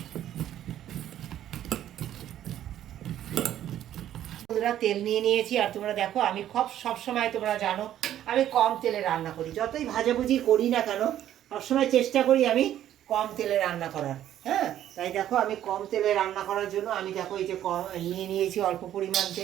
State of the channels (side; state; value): left; quieter; 11.6 dB